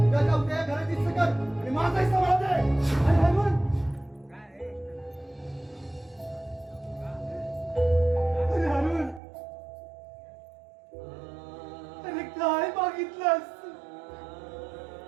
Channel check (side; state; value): left; drops out; at 9.2 s